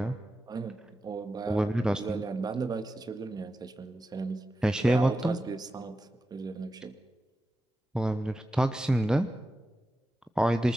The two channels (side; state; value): both; normal; correlation 0.92